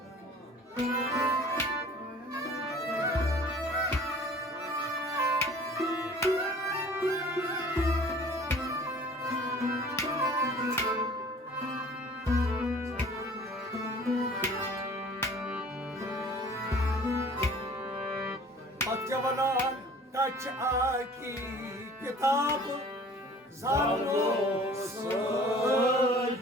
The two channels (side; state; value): both; normal; correlation 0.48